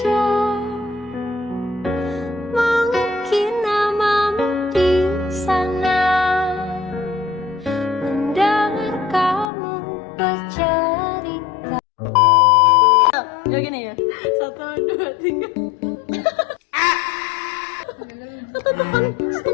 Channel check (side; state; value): right; drops out; at 9.5 s